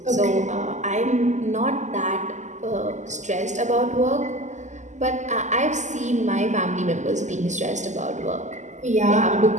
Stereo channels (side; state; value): left; late; 0.34 ms